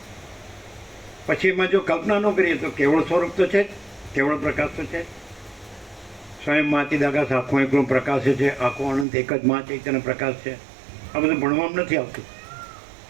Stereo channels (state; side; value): drops out; left; at 9.1 s